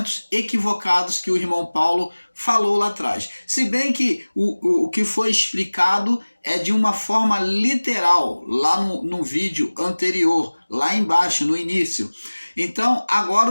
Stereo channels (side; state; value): both; inverted; correlation -1.00